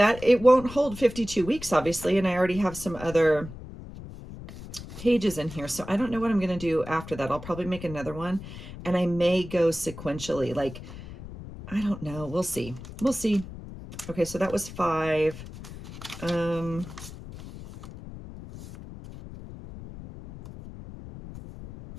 It won't hold 52 weeks, obviously, and I already have some other pages in here, so I don't know what I'm going to do after that. I'll probably make another one, and I may go sequentially, like, I don't know. We'll see. We'll see. Okay, so that was 5.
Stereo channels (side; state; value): left; noise; rumble, 13 dB below the sound